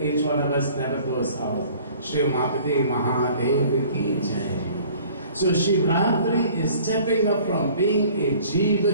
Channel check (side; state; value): both; inverted; correlation -0.51